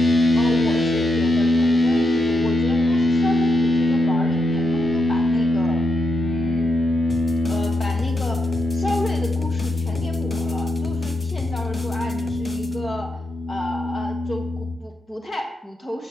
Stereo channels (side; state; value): both; normal; correlation 0.83